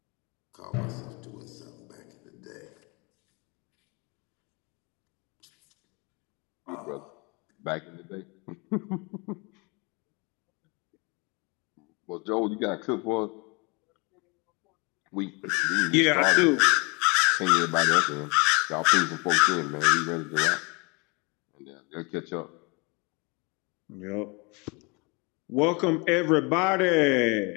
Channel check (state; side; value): quieter; right; 29.3 dB